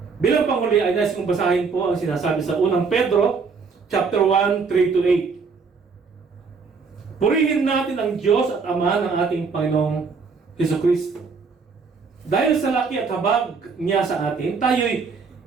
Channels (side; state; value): left; quieter; 5.0 dB